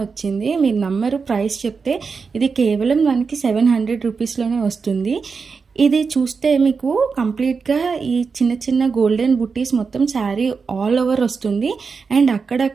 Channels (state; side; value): quieter; left; 5.1 dB